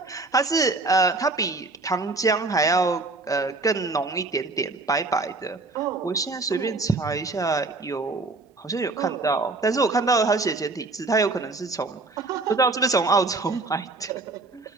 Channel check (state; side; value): quieter; left; 3.5 dB